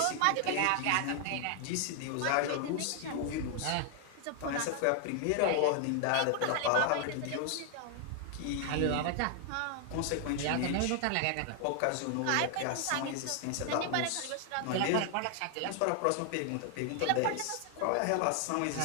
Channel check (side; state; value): both; different; correlation 0.00